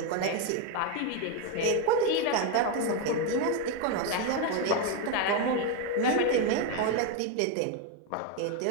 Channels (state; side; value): different; both; correlation 0.02